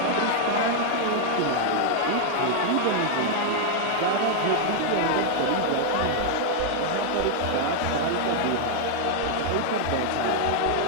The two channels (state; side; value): different; both; correlation 0.00